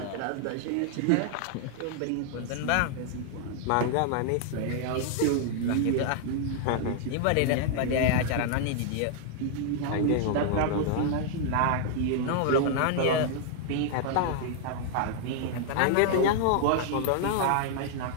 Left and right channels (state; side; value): different; both; correlation -0.01